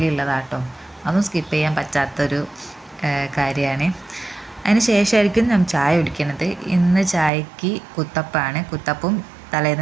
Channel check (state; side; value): drops out; left; at 7.3 s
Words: ഉള്ളതാട്ടോ. അതും സ്കിപ്പ് ചെയ്യാൻ പറ്റാത്തൊരു കാര്യമാണ്. അതിന് ശേഷമായിരിക്കും ഞാൻ ചായ കുടിക്കുന്നത്. ഇന്ന് ചായക്ക് കുത്തപ്പമാണ്. കുത്തപ്പും